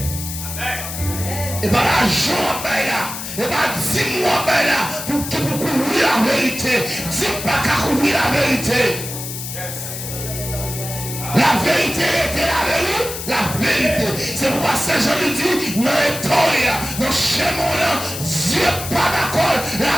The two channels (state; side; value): noise; left; hiss, 8 dB below the sound